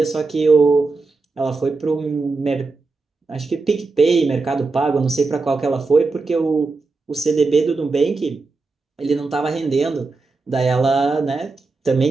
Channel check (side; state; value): left; quieter; 3.9 dB